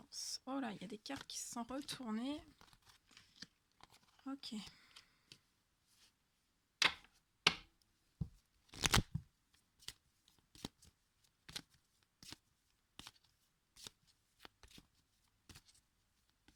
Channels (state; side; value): identical; both; correlation 1.00